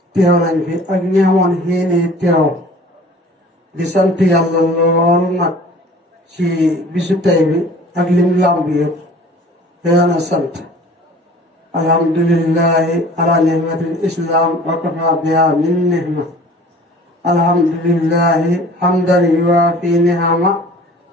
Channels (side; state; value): both; normal; correlation 0.47